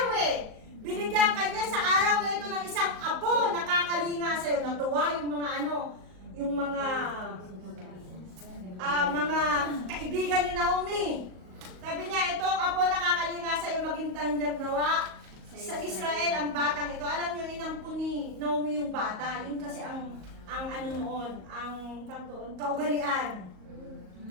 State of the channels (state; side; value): late; left; 38 ms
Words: Binigyan kanya sa araw na ito ng isang apo na kakalinga sa'yo. Natuwa yung mga yung mga kaibigan ni Naomi. Sabi niya, ito apo na kakalinga sa'yo, maging tangyag nawa sa Israel ang batang ito. Alam niyo, inampo ni Naomi yung bata. Yun kasi ang kaugalian.